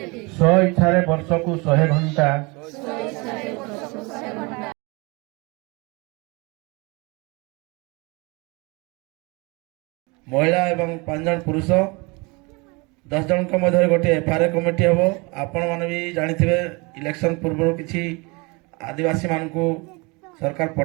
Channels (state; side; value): quieter; left; 27.5 dB